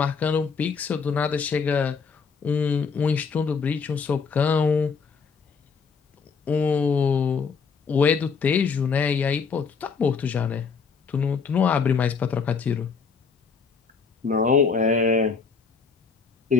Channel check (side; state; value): right; quieter; 5.4 dB